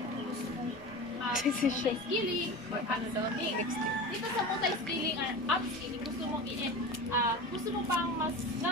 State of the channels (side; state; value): both; normal; correlation 0.30